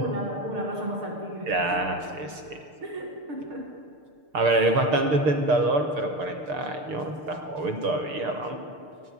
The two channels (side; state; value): left; late; 6.7 ms